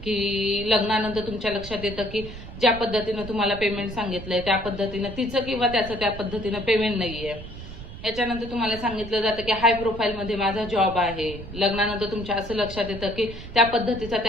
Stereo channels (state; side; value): noise; right; rumble, 12 dB below the sound